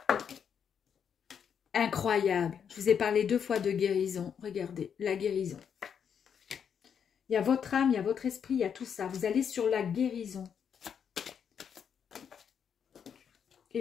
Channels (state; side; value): quieter; right; 7.6 dB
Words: Incroyable. Je vous ai parlé 2 fois de guérison. Regardez, la guérison. Il y a votre âme, il y a votre esprit, il y a tout ça. Vous allez sur la guérison.